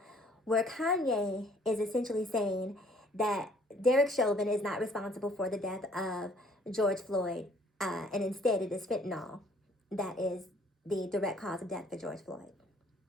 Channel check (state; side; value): normal; both; correlation 0.59